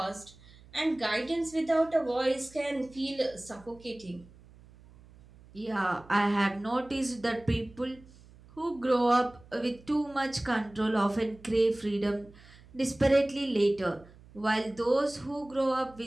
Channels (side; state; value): right; noise; hum, 23 dB below the sound